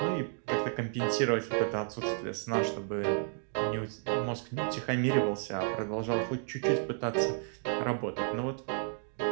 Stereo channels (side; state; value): left; silent; 56 dB below the other